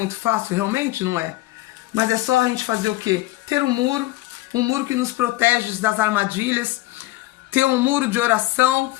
fácil, realmente não é. Mas é só a gente fazer o quê? Ter um muro que nos protege das armadilhas, ter um muro de oração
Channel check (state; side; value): quieter; right; 18.8 dB